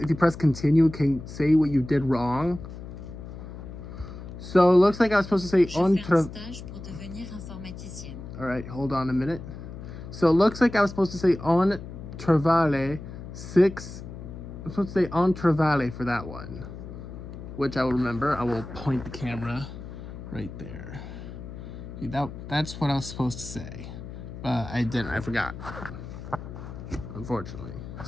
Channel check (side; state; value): left; noise; hum, 11 dB below the sound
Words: you press continue, it can say what you did wrong. So it looks like I was supposed to say Alright, hold on a minute. So it looks like I was supposed to say on travaille 6. I'm supposed to say on travaille for that one, which I will remember. I will point the camera right there. That's what I was supposed to say, but I didn't. I forgot, unfortunately.